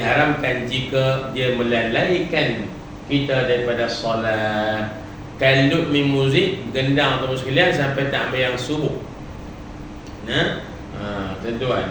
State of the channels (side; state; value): both; identical; correlation 1.00